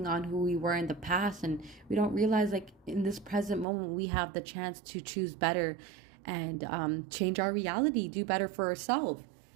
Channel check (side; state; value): left; drops out; at 3.7 s